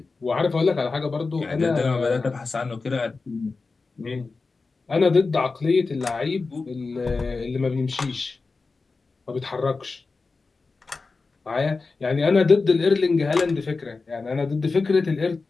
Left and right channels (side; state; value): right; quieter; 4.1 dB